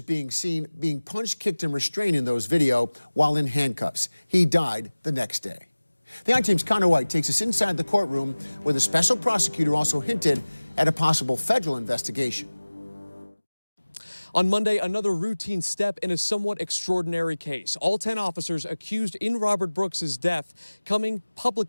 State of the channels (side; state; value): both; inverted; correlation -1.00